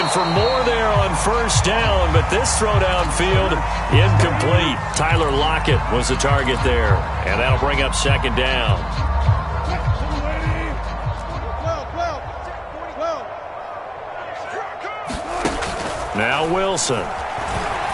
for more there on 1st down, but this throw downfield incomplete. Tyler Lockett was the target there, and that'll bring up 2nd down. Now Wilson.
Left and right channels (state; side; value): identical; both; correlation 1.00